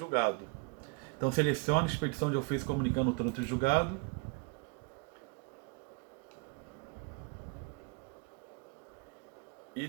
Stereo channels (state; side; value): quieter; left; 30.6 dB